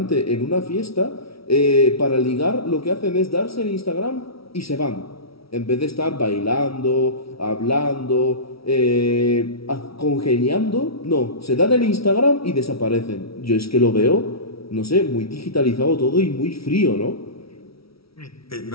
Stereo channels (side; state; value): right; late; 0.75 ms